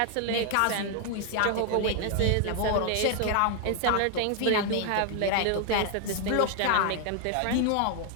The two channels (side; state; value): both; different; correlation 0.00